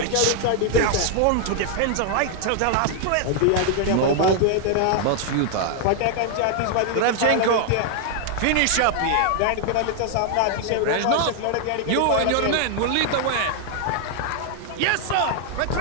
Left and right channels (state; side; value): different; both; correlation 0.00